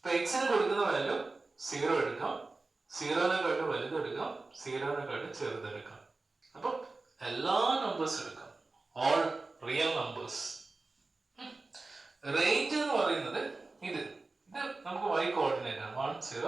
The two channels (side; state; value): left; quieter; 3.5 dB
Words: എക്സിന് കൊടുക്കുന്ന വാല്യൂ 0 എടുക്കാം, 0-നെക്കാട്ട് വലുതെടുക്കാം, 0-നെക്കാട്ട് ചെറുതെടുക്കാം. അപ്പൊ എല്ലാ നമ്പേഴ്സ് എടുക്കാം, ഓൾ റിയൽ നമ്പേഴ്സ്. റേഞ്ച് എന്ന് പറയുന്നത് ഇത് നമുക്ക് y കോർഡിനേറ്റ് ആണ്, 1